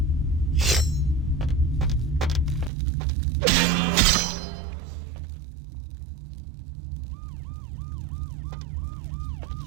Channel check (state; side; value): drops out; left; at 2.7 s